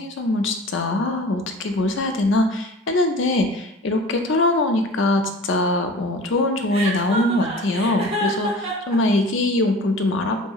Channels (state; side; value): normal; both; correlation 0.41